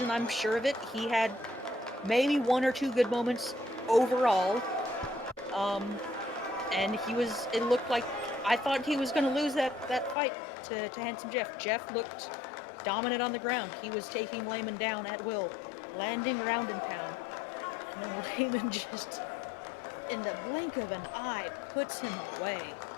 I'm sure of it. He had maybe 1 or 2 good moments overall. And it looked like, I thought he was going to lose that fight to Handsome Jeff. Jeff looked dominant on the ground. He was taking Lehman down at will, landing ground and pound. And then Lehman just, in the blink of an eye, puts him away.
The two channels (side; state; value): right; drops out; at 10.2 s